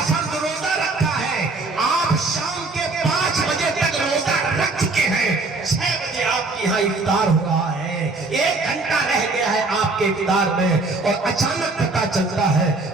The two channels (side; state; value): left; quieter; 3.4 dB